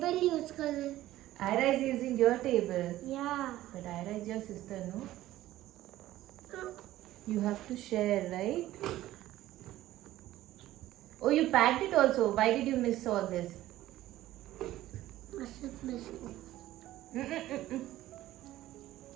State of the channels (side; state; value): left; quieter; 15.0 dB